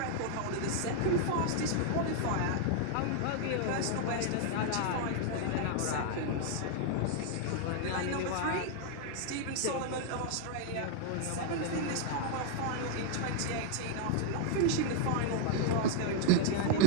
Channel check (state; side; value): different; both; correlation 0.00